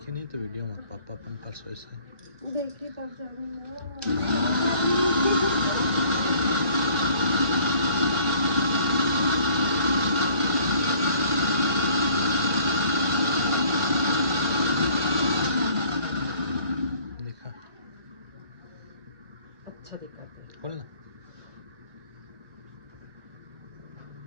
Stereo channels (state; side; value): late; left; 1.2 ms